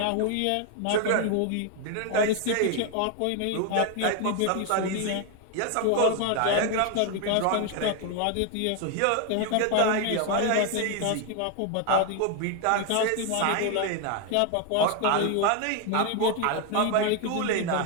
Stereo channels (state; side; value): different; both; correlation 0.01